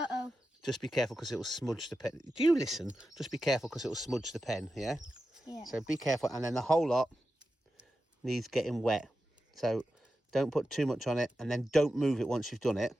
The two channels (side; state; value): both; normal; correlation 0.91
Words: just be careful because it will smudge the pen. Do you listen? Just be careful because it will smudge the pen. Yeah. Yeah. So be careful, and then the whole lot needs getting wet. So don't put too much on it, and then don't move it once you've done it.